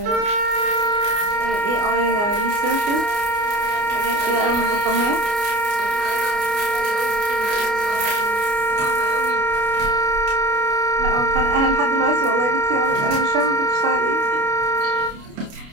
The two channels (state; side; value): late; left; 29 ms